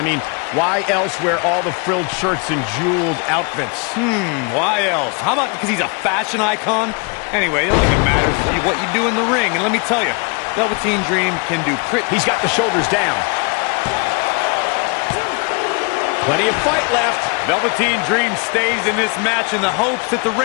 mean, why else wear all the frilled shirts and jeweled outfits? Why else? How about because he's a fashion icon? Anyway, the only thing that matters is what you do in the ring. And let me tell you, Velveteen Dream can do pretty... He's got the shoulders down. Plenty of fight left. Velveteen Dream stays in this match in the hopes that the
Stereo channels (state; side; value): quieter; right; 33.3 dB